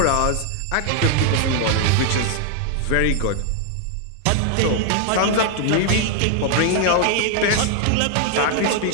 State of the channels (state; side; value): different; both; correlation 0.00